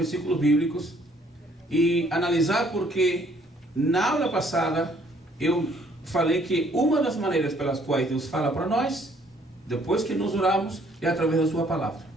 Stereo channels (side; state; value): both; normal; correlation 0.63